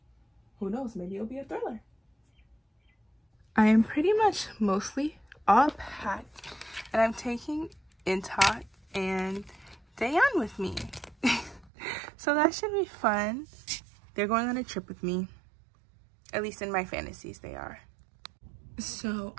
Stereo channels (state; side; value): drops out; left; at 11.7 s